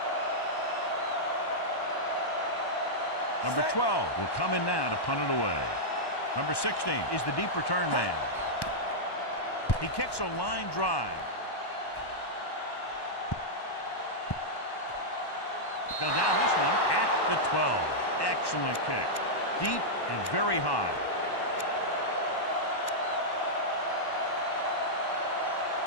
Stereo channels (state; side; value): late; right; 1.1 ms